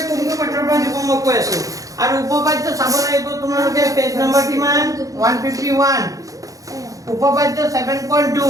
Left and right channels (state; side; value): late; left; 0.17 ms